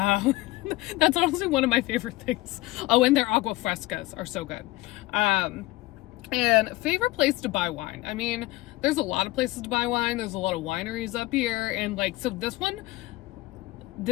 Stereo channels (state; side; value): quieter; right; 19.3 dB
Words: honestly one of my favorite things. Oh, and their agua frescas are so good. And favorite place to buy wine. I mean, there's a lot of places to buy wine. There's a lot of wineries up here. And like, so this